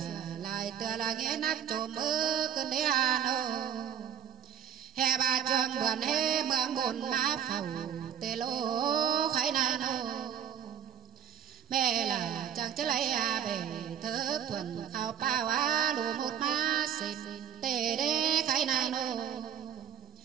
lại tựa là nghe nát trộm mơ cơn đế hà nô hè bà trường buồn hê mương buồn má phầu tê lô khái nai nô mẹ là chẳng chất lấy à bể thơ thuần khao bao á lù một má xịt tê đế khái nai nô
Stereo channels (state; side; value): quieter; left; 9.0 dB